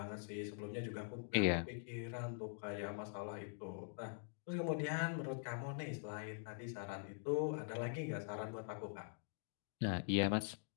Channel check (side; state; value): right; silent; digital silence